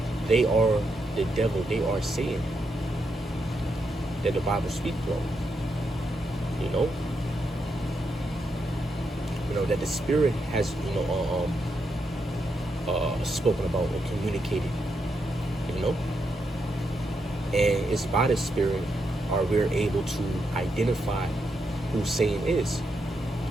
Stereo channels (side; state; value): both; normal; correlation 0.82